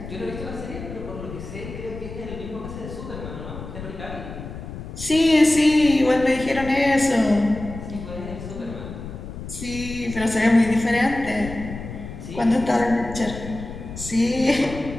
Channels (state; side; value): noise; left; rumble, 10 dB below the sound